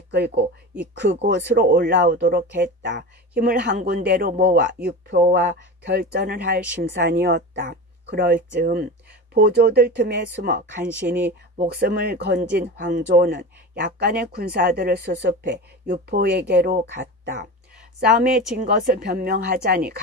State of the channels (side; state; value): both; normal; correlation 0.28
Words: 그곳으로 올라오도록 했다. 힘을 한 군데로 모아 유표와 결전을 할 심산이었다. 그럴 즈음 보조들 틈에 숨어 간신히 목숨을 건진 황조는 약간의 군사들을 수습해 유포에게로 갔다. 싸움에 진 것을 변명하자니